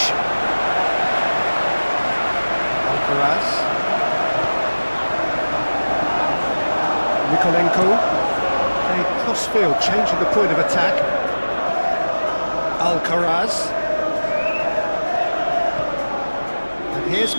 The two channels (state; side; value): inverted; both; correlation -1.00